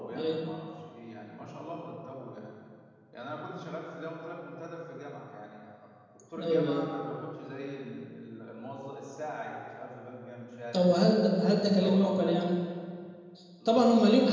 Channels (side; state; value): both; identical; correlation 1.00